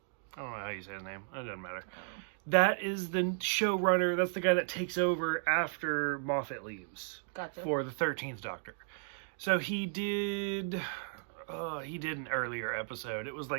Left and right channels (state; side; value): silent; left; digital silence